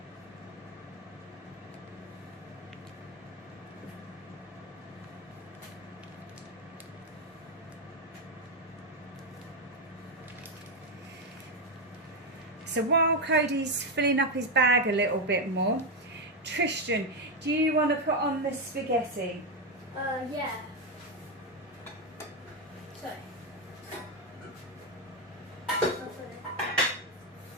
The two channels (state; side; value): normal; both; correlation 0.06